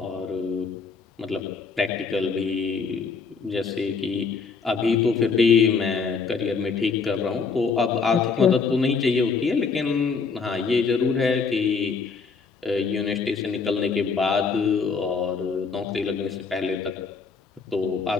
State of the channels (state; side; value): quieter; right; 5.1 dB